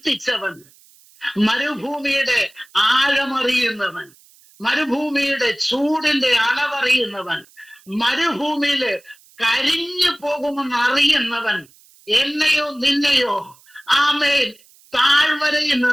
മരുഭൂമിയുടെ ആഴമറിയുന്നവൻ, മരുഭൂമിയുടെ ചൂടിന്റെ അളവറിയുന്നവൻ, മരുഭൂമിയില് കരിഞ്ഞു പോകുമെന്ന് അറിയുന്നവൻ, എന്നെയോ നിന്നെയോ ആമേൻ താഴ്വരയിൽ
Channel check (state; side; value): noise; right; hiss, 28 dB below the sound